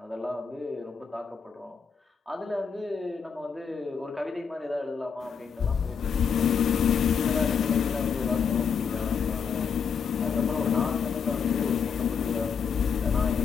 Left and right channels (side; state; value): right; quieter; 6.4 dB